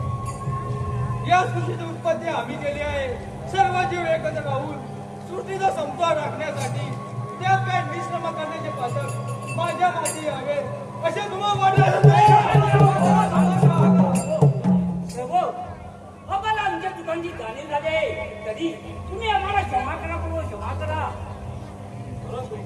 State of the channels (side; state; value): both; identical; correlation 1.00